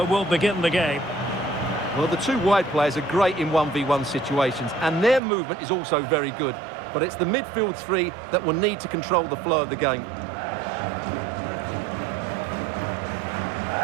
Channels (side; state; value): left; drops out; at 5.2 s